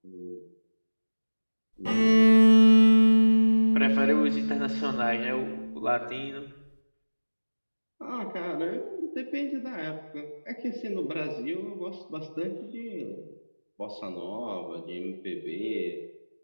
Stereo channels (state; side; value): inverted; both; correlation -1.00